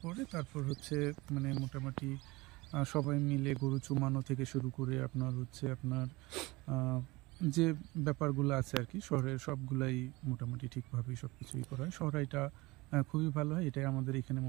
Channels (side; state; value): left; quieter; 22.4 dB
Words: পরে তারপর হচ্ছে মানে মোটামুটি সবাই মিলে গরু চুমানো থেকে শুরু করে আপনার হচ্ছে আপনার যে ব্যাপারগুলো আছে আর কি শহরের সবগুলাই মোটামুটি ঠিকভাবেই সব কিছুই করা হয়। শহরাইটা খুবই ভালো হয়, এটাই আমাদের এখানে